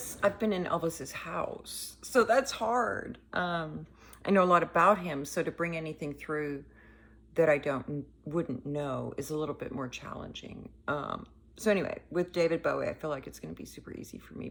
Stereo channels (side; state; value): both; identical; correlation 1.00